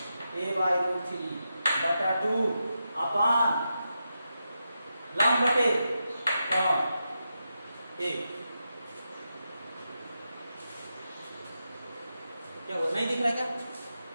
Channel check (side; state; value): both; inverted; correlation -0.87